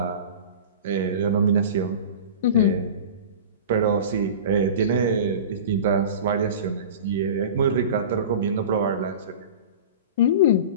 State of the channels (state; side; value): inverted; both; correlation -0.34